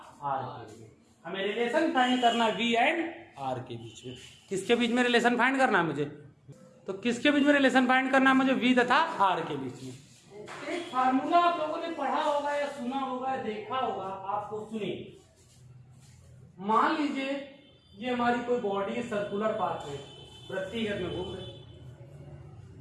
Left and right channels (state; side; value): identical; both; correlation 1.00